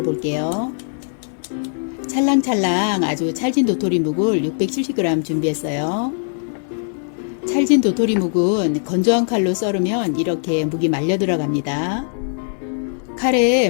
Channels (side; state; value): right; silent; digital silence